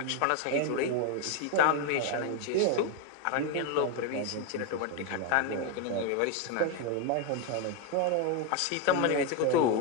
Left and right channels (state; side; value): different; both; correlation 0.02